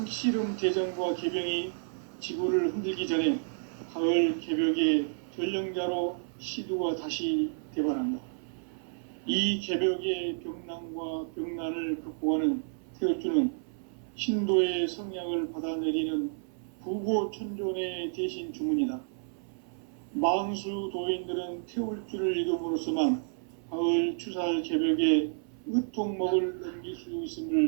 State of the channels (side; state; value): left; silent; 55 dB below the other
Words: 대전과 개병이 지구를 흔들기 전에 가을 개벽의 전령자로 시두가 다시 대발한다. 이 개벽의 병난과 병난을 극복하는 태울주는 신도의 성향을 받아내리는 부고천존의 대신 주문이다. 만수 도인들은 태울주를 이름으로서만 가을 추살 개벽의 의통목을 넘길 수